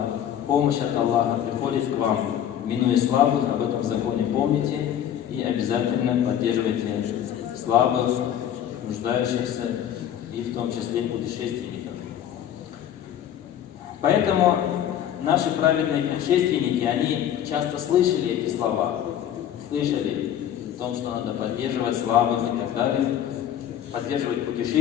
помощь от Аллаха приходит к вам, минуя слабых? Об этом законе помните и обязательно поддерживайте слабых, нуждающихся и в том числе путешественников. Поэтому наши праведные предшественники, они часто слышали эти слова, слышали о том, что надо поддерживать слабых и так далее, поддерживать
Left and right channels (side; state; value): right; quieter; 10.3 dB